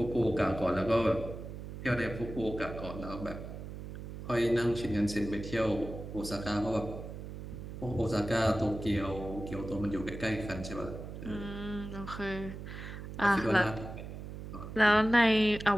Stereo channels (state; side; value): noise; right; hum, 10 dB below the sound